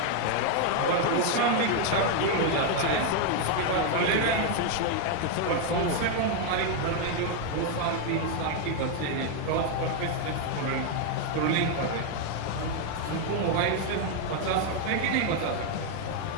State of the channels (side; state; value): both; different; correlation 0.01